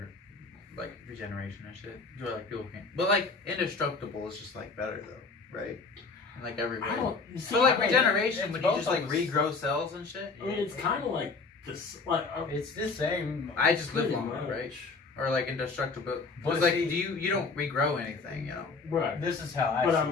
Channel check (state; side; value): quieter; right; 4.3 dB